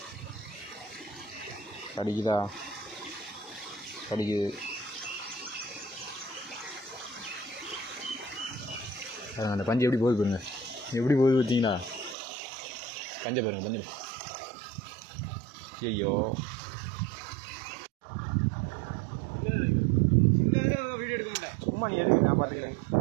கடிக்குதா கடிக்குது. அந்த பஞ்சு எப்படி போகுது பாருங்க, எப்படி போகுது பார்த்தீங்களா? பஞ்சை பாருங்க பஞ்சு. ஐயோ வீடியோ எடுக்க முடியல, சும்மா நீ எதுக்கு நான் பார்த்துக்கிறேன்.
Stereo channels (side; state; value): left; drops out; at 12.2 s